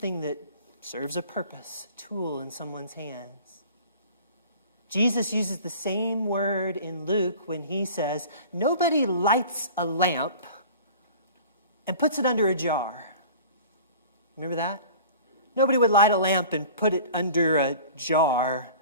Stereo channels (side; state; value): both; inverted; correlation -0.43